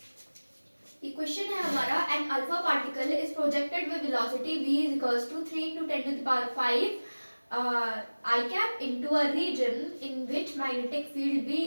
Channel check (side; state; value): both; inverted; correlation -1.00